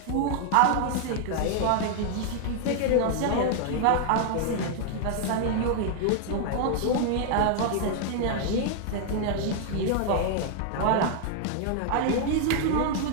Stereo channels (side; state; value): both; different; correlation 0.00